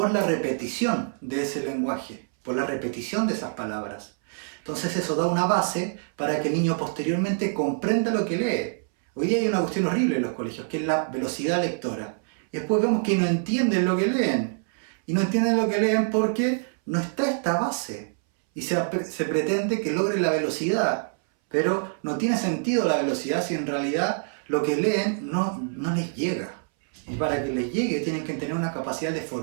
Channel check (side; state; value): left; silent; 61 dB below the other